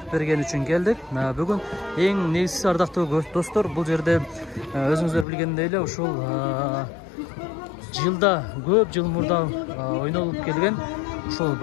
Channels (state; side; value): drops out; right; at 5.2 s